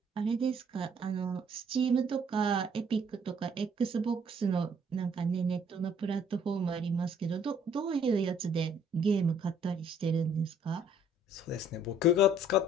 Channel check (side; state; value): both; normal; correlation 0.61